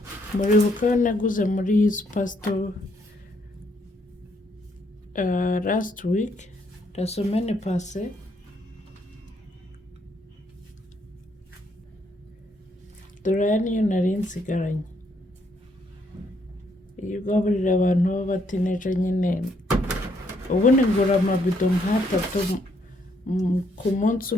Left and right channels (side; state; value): both; normal; correlation 0.72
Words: Muribuka yo naguze muri superstore last week, la semaine passée. Dore aya niyo nari nsigaranye. Iyo ugaburira abantu b'abatineja nyine, ubundi ngura amabido nk'atatu ku munsi